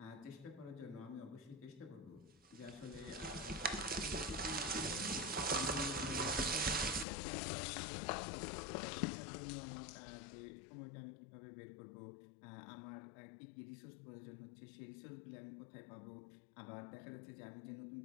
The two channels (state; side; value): drops out; right; at 7.1 s